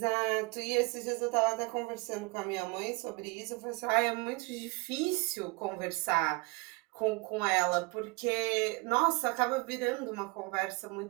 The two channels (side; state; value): left; quieter; 26.9 dB